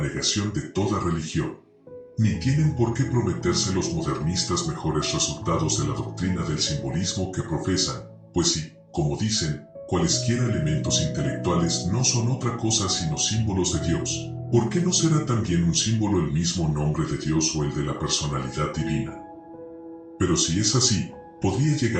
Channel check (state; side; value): identical; both; correlation 1.00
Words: de toda religión. Ni tienen por qué prometerse los modernistas mejores resultados de la doctrina del simbolismo que profesan, pues si, como dicen, cualesquiera elementos intelectuales no son otra cosa sino símbolos de Dios, ¿por qué no será también un símbolo el mismo nombre de Dios o el de la personalidad divina? Pero si es así, podría